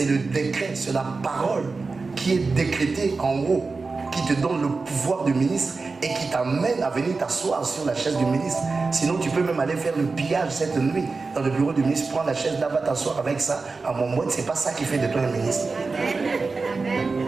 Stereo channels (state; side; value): quieter; left; 4.1 dB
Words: le décret, c'est la parole qui est décrétée en haut, qui te donne le pouvoir du ministre et qui t'amène à venir t'asseoir sur la chaise du ministre. Sinon, tu peux même aller faire le pillage cette nuit dans le bureau du ministre, prends la chaise là, va t'asseoir avec ça. À mon mot, c'est pas ça qui fait de toi un ministre.